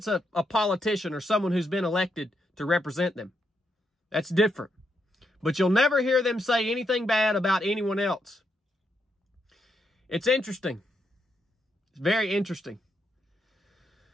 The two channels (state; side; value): normal; both; correlation 0.80